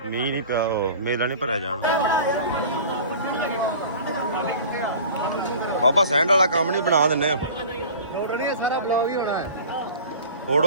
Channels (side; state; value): both; inverted; correlation -0.41